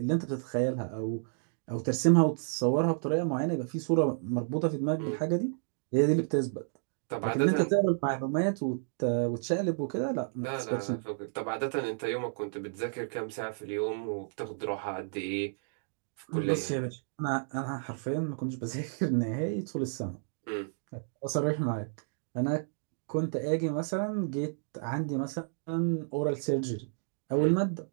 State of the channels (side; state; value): left; silent; digital silence